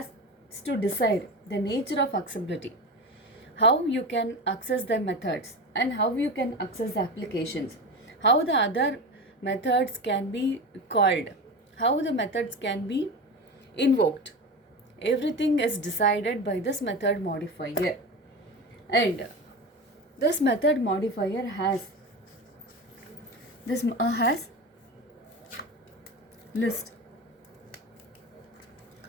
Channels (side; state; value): both; normal; correlation 0.25